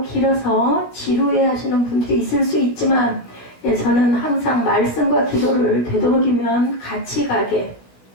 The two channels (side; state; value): right; late; 16 ms